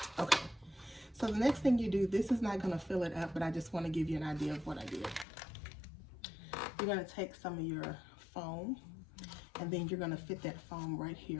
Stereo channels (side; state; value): right; drops out; at 5.2 s